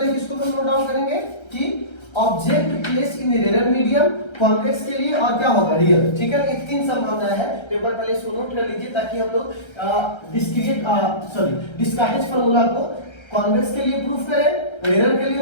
किसको हम नोट डाउन करेंगे कि ऑब्जेक्ट प्लेस इन रेरर मीडियम, कॉन्वेक्स के लिए, और क्या होगा, रियल, ठीक है ना। ये तीन संभावनाएं हैं, पेपर पहले इसको नोट कर लीजिए ताकि हम लोग डिस्कार्टेज फार्मूला को कॉन्वेक्स के लिए प्रूफ करें, रेरर के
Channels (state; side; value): late; right; 1.3 ms